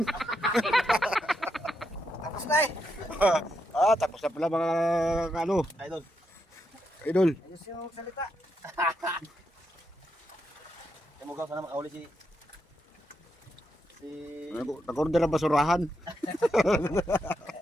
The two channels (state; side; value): normal; both; correlation 0.82